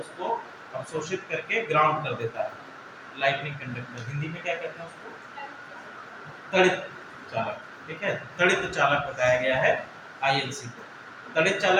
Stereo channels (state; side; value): identical; both; correlation 1.00